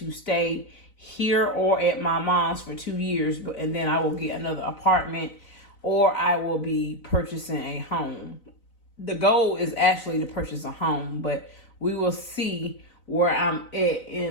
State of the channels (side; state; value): right; late; 3.9 ms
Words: stay here or at my mom's for 2 years, and then I will get another apartment or I will be purchasing a home. The goal is actually to purchase a home, but we will see where I'm at